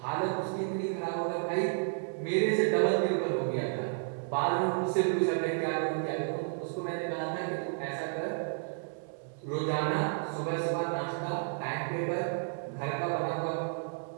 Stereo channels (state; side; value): silent; left; 57 dB below the other